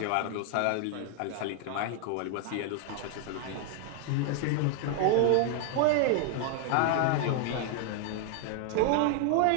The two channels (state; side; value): different; both; correlation 0.00